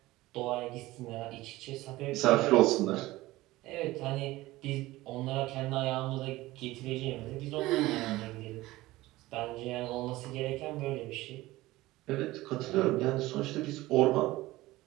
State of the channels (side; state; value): left; quieter; 18.2 dB